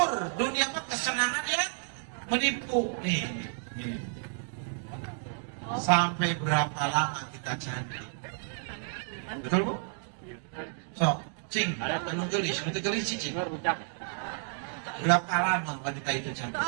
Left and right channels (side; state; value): left; silent; 57 dB below the other